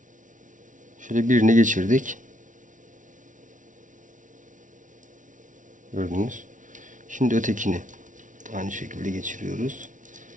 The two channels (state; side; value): late; left; 0.37 ms